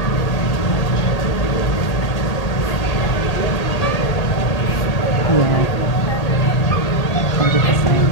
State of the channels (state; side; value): late; right; 1.8 ms